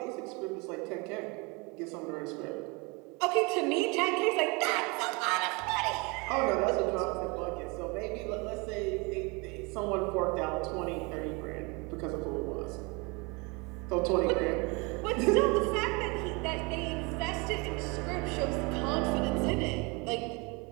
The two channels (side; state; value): left; quieter; 28.5 dB